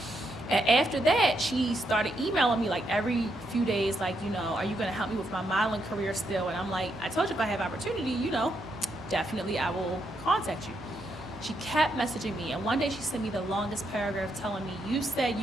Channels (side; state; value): right; noise; hum, 21 dB below the sound